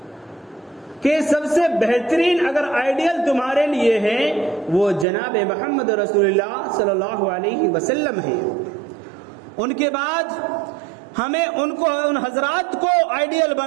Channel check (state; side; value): drops out; left; at 5.1 s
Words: کہ سب سے بہترین اگر آئیڈیل تمہارے لیے ہے وہ جناب محمد رسول اللہ صلی اللہ علیہ وسلم ہے۔ ان کے بعد ہمیں ان حضرات کو آئیڈیل